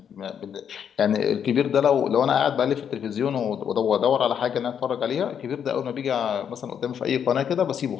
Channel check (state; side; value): quieter; right; 8.2 dB